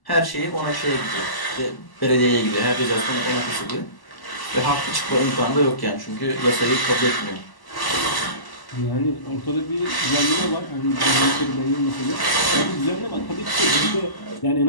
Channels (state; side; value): late; right; 1.0 ms